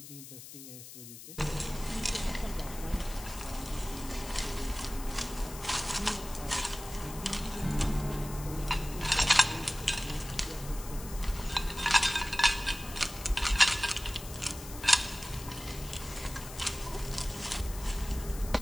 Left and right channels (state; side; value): noise; left; hiss, 13 dB below the sound